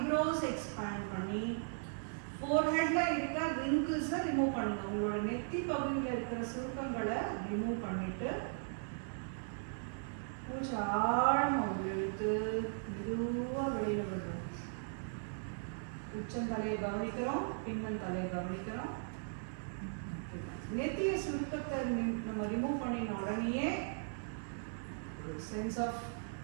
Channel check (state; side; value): silent; left; digital silence